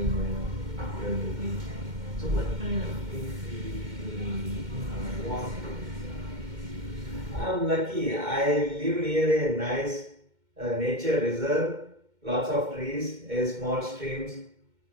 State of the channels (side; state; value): left; late; 2.1 ms